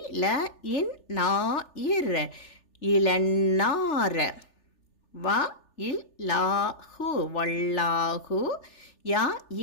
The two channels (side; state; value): right; late; 3.4 ms